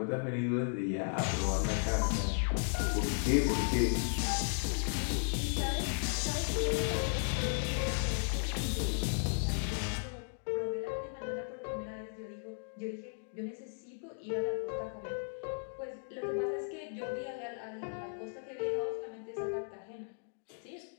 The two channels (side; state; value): right; silent; digital silence